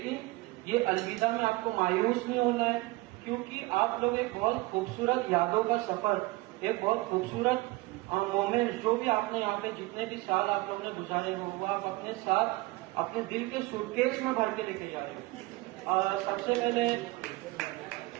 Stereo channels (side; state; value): left; quieter; 21.4 dB